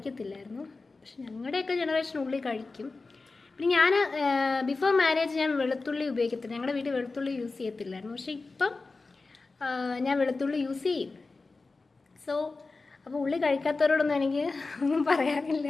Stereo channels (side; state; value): right; quieter; 3.8 dB